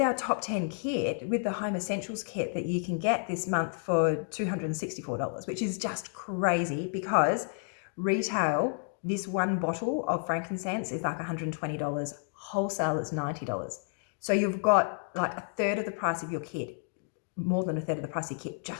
top 10 kit, with the Home Essentials kit that you can get this month for $264, which is just crazy because retail, this one bottle of frankincense is like $120. Wholesale is $90. So you've got like a third of the price of your kit, more than a third of the price of your kit,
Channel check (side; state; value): right; silent; 57 dB below the other